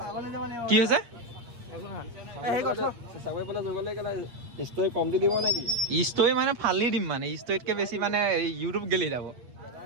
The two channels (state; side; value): late; left; 8.5 ms